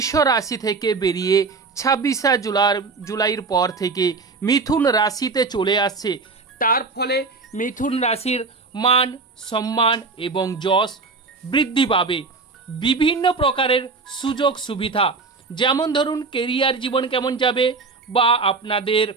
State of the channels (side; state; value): left; quieter; 4.2 dB